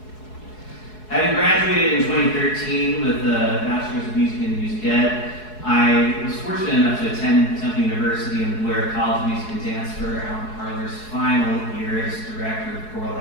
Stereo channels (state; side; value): late; right; 4.7 ms